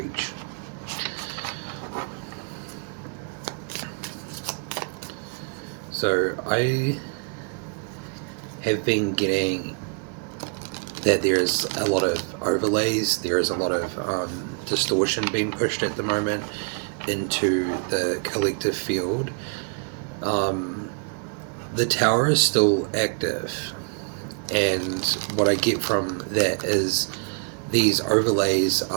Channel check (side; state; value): left; quieter; 39.7 dB